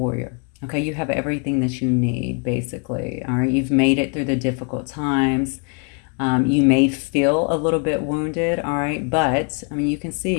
okay? You have everything that you need, basically, all right? You've made it through the difficult times. You may feel a little bit wounded, all right? But, I mean, you can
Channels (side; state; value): right; quieter; 37.7 dB